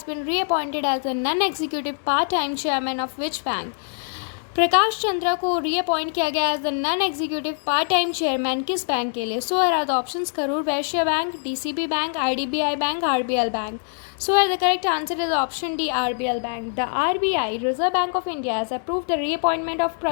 been reappointed as the non-executive part-time chairman of which bank? Prakash Chandra को reappoint किया गया as the non executive part time chairman किस bank के लिए? सो here are the options: Karur Vysya bank, DCB bank, IDBI bank, RBL bank. So here the correct answer is option D, RBL Bank. The RBI, Reserve Bank of India, has approved the reappointment of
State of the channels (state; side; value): silent; right; 63 dB below the other